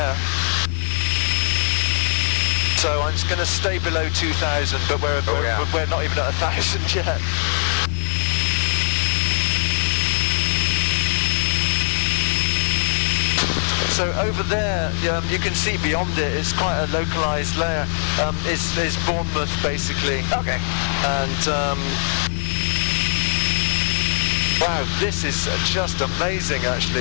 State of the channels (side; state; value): right; silent; digital silence